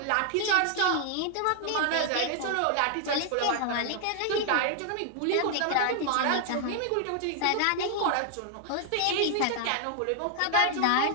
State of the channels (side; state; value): both; different; correlation 0.00